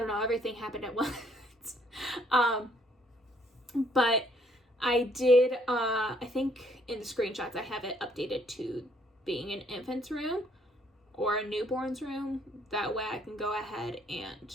know. Everything happened at once. But I did, I think in the screenshots I have it updated to being an infant's room or a newborn's room. That way I can go ahead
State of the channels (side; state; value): both; normal; correlation 0.66